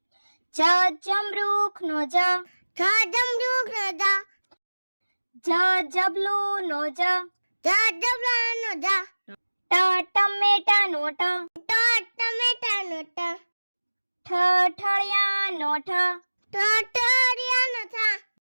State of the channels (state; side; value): inverted; both; correlation -1.00